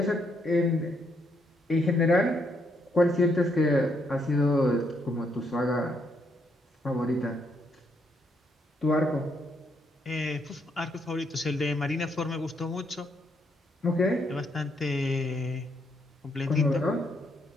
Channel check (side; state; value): both; normal; correlation 0.75